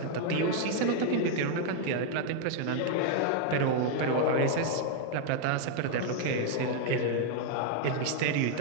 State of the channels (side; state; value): both; different; correlation 0.00